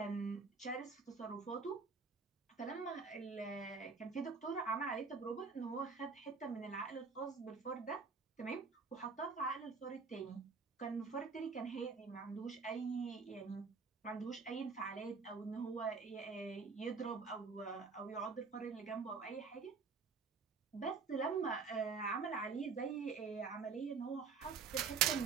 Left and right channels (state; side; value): quieter; left; 5.1 dB